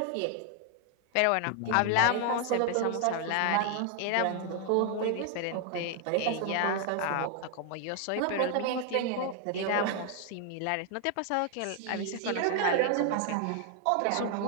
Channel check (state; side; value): different; both; correlation 0.00